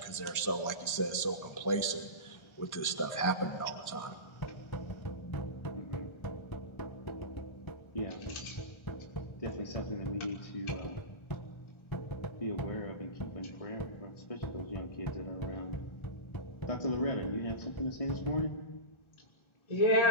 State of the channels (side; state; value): right; late; 1.3 ms